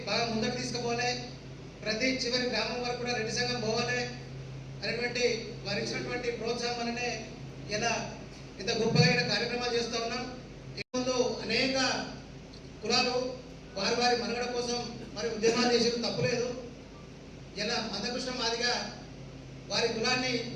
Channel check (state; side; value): identical; both; correlation 1.00